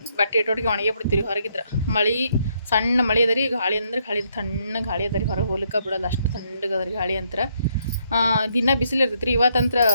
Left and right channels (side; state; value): both; inverted; correlation -0.73